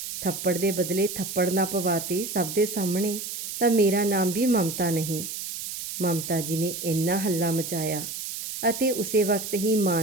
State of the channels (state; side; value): noise; right; hiss, 7 dB below the sound